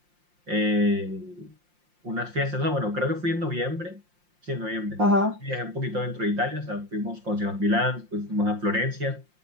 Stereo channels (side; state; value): left; late; 5.7 ms